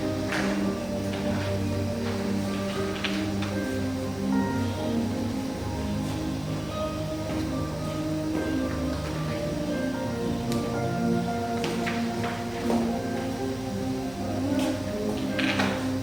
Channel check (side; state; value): right; noise; hum, 17 dB below the sound